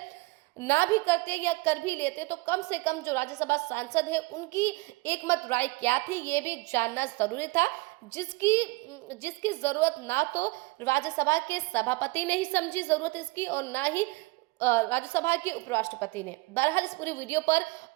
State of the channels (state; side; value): quieter; left; 23.9 dB